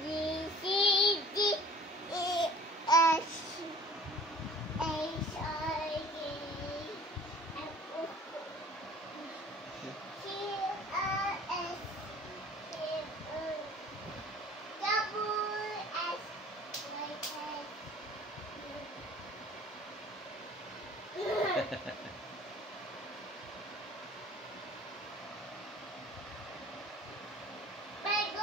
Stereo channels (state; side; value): normal; both; correlation 0.48